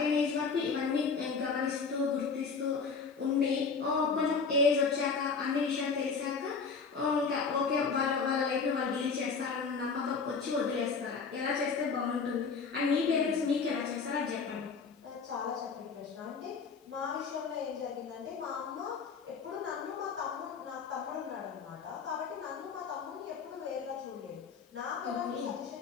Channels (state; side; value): quieter; right; 5.2 dB